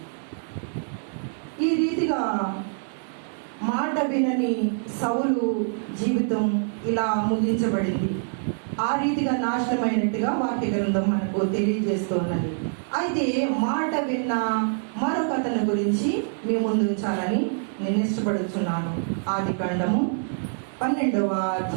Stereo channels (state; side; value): silent; left; 61 dB below the other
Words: ఈ రీతిగా మాట వినని సౌలు జీవితం ఇలా ముగించబడింది. ఆ రీతిగా నాశనమైనట్టుగా వాక్య గ్రంథం మనకు తెలియజేస్తూ ఉన్నది. అయితే మాట విన్న మరొక అతని గురించి మీ ముందు ఉంచాలని నేను ఇష్టపడుచున్నాను. ఆదికాండము 12వ